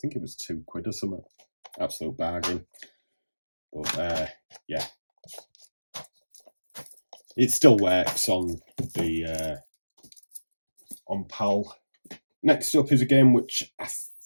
it was £2 or something. Absolute bargain. But yeah, it still works on the on PAL. Next up is a game which I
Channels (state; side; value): inverted; both; correlation -1.00